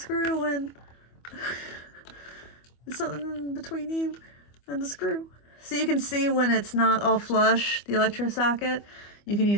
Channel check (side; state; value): right; late; 25 ms